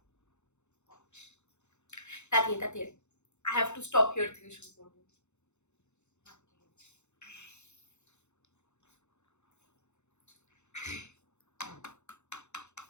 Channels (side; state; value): right; late; 0.83 ms